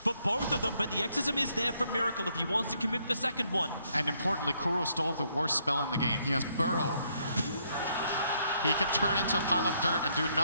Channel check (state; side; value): inverted; both; correlation -0.72